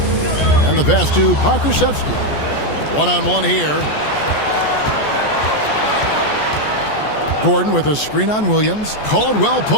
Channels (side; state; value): right; late; 14 ms